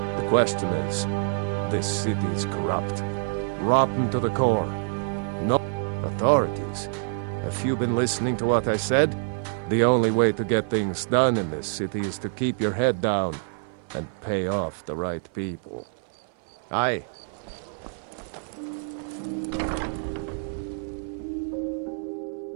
The question is, this city's corrupt. Rotten to the core. No authorities. Have you been listening to what I said? The only way to get things done in this city is to keep your head down and pay off the right people. Aye.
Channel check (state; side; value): silent; left; 56 dB below the other